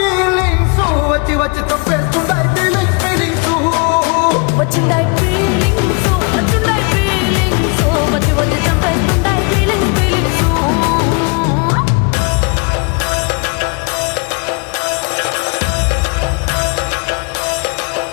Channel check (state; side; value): quieter; right; 32.8 dB